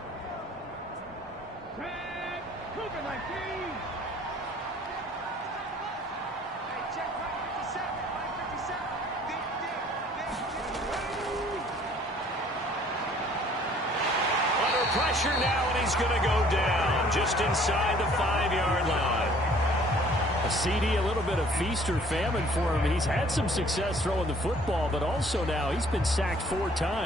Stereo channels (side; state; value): both; normal; correlation 0.56